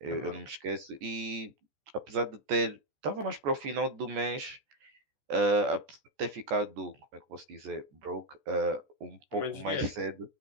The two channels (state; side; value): late; left; 14 ms